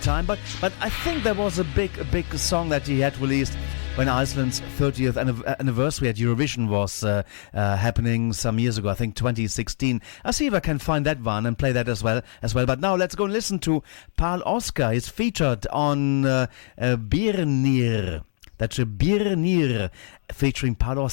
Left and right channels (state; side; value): silent; right; digital silence